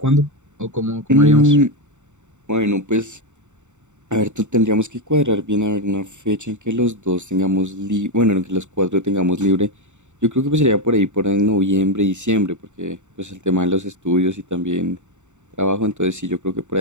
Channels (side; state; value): left; late; 0.84 ms